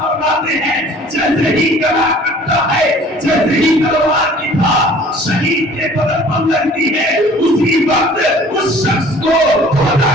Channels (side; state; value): both; normal; correlation 0.50